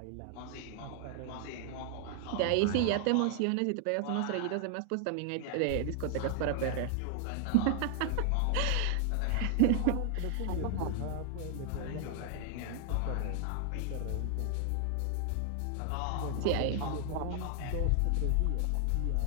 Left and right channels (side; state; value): both; different; correlation 0.00